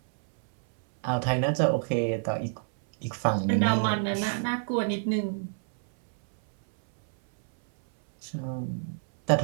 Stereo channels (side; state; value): left; silent; 60 dB below the other